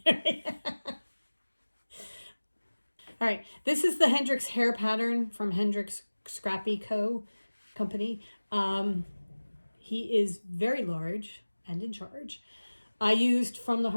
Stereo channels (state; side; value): inverted; both; correlation -1.00